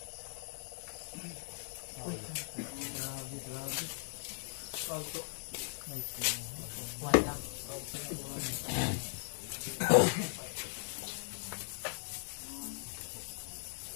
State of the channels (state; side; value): silent; right; digital silence